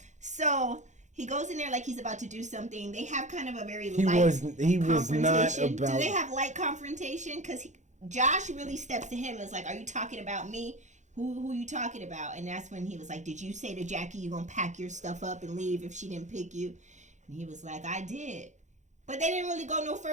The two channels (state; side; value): late; left; 0.35 ms